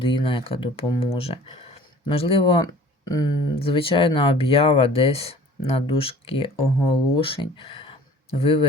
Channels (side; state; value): both; normal; correlation 0.47